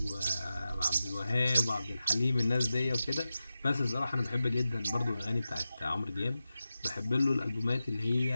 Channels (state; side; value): inverted; both; correlation -0.92